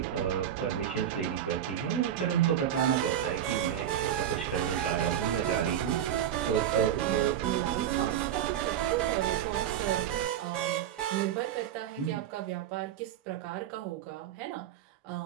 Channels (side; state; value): left; quieter; 10.2 dB